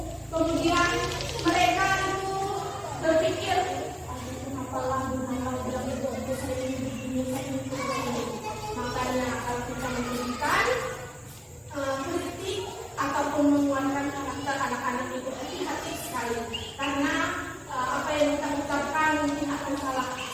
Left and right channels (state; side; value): identical; both; correlation 1.00